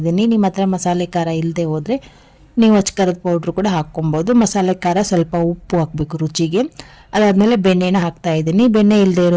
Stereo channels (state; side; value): identical; both; correlation 1.00